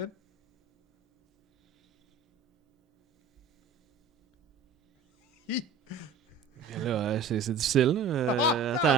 Hi! Mais là, c'est difficile. Là.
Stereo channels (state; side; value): quieter; left; 4.9 dB